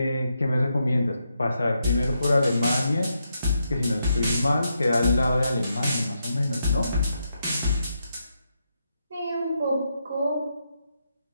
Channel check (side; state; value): both; inverted; correlation -0.82